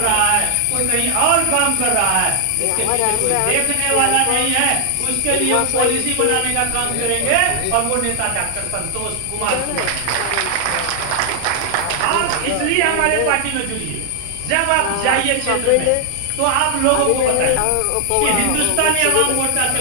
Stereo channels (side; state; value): both; different; correlation 0.00